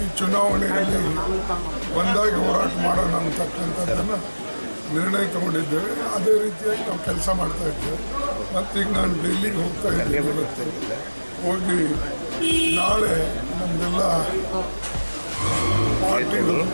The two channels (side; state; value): both; inverted; correlation -1.00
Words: ಚುನಾವಣೆಯಲ್ಲಿ ಒಂದಾಗಿ ಹೋರಾಟ ಮಾಡೋಣ ಅಂತಕ್ಕಂಥದ್ದನ್ನು ನಿರ್ಣಯ ತಗೊಂಡಿದ್ದೇವೆ. ಅದೇ ರೀತಿಯಾಗಿ ನಾವು ಕೆಲಸ ಮಾಡ್ತಾ ಇದ್ದೇವೆ. ಮತ್ತೀಗ ನಾನು ಡೆಲ್ಲಿಗೆ ಹೋಗ್ತಾ ಇದ್ದೇನೆ. ಹೋಗಿ ನಾಳೆ ನಮ್ಮದೆಲ್ಲ ಪಾರ್ಟಿಗಳು